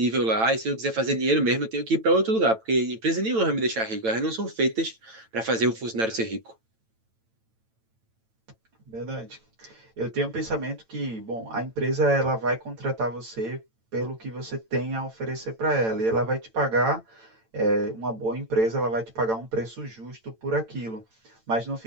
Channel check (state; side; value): late; left; 9.0 ms